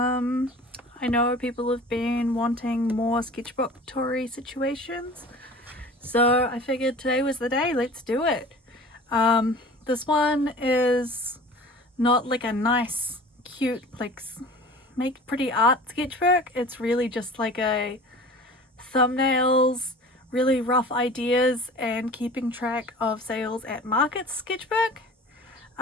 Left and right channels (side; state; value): both; normal; correlation 0.42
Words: know people have been wanting more sketchbook toury situations, so I figured today was the day. Let's do it. This one is not like a nice, cute, like make pretty art sketchbook. It's really just like a thumbnails, really rough ideas, and keeping track of sales at markets sketchbook.